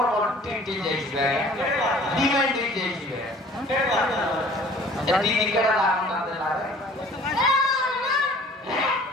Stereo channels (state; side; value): normal; both; correlation 0.50